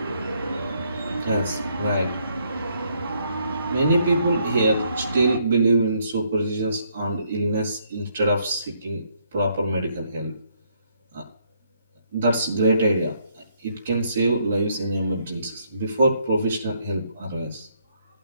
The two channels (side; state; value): both; inverted; correlation -0.71